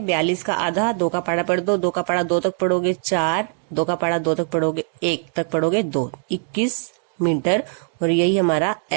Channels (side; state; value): left; silent; 56 dB below the other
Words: 42 का आधा, 2 का पाड़ा पढ़ दो, 2 का पाड़ा 2 तक पढ़ोगे 4, 2 का पढ़ा 2 तक पढ़ोगे 1 तक पढ़ोगे 2, 21 मीटर, और यही हमारा